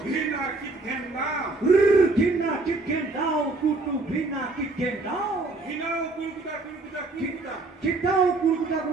ঘৃণা কিটঘেন দাও ঘৃণা কিটঘেন দাও কুটু ঘৃণা কিটঘেন দাও ঘৃণাও কুলকুটা কুলকুটা কুলকুটা ঘৃণাও কুলকুটা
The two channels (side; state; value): left; quieter; 3.3 dB